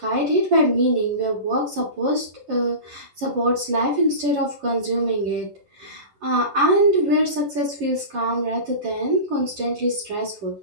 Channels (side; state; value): left; late; 11 ms